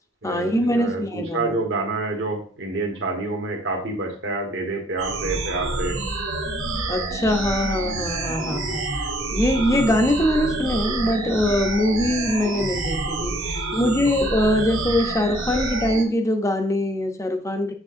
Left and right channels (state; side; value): normal; both; correlation 0.63